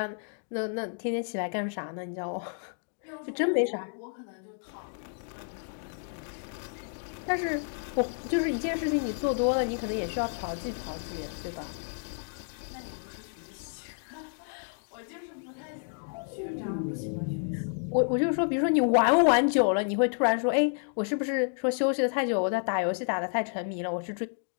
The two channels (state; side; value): silent; right; 56 dB below the other